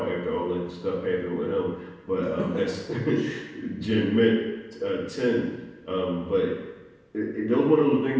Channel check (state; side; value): identical; both; correlation 1.00